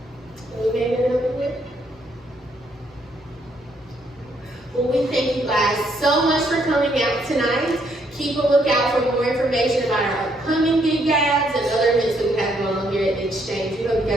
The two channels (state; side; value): normal; both; correlation 0.72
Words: We may get over with. Well, we thank you guys so much for coming out tonight. Keep a lookout for more information about our upcoming Gig E.A.S.T and other events that we have going on here at the Exchange. We hope you